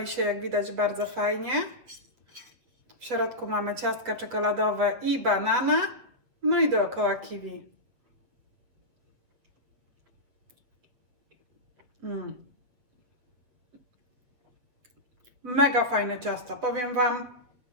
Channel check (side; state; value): left; late; 8.2 ms